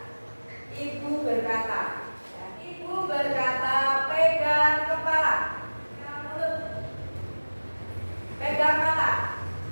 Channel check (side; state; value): both; inverted; correlation -1.00